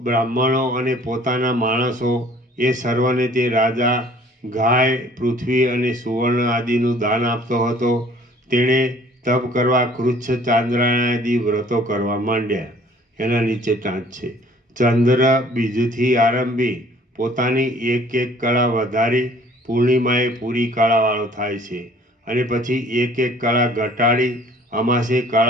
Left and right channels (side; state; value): both; normal; correlation 0.55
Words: બ્રાહ્મણો અને પોતાના માણસો એ સર્વને તે રાજા ગાય, પૃથ્વી અને સુવર્ણ આદિનું દાન આપતો હતો. તેણે તપ કરવા કૃચ્છ, ચાંદ્રાયણ આદિ વ્રતો કરવા માંડ્યા. એના નીચે ટાંચ છે. ચંદ્ર બીજથી આરંભી પોતાની એક કળા વધારી પૂર્ણિમાએ પૂરી કળાવાળો થાય છે અને પછી એક કળા ઘટાડી અમાસે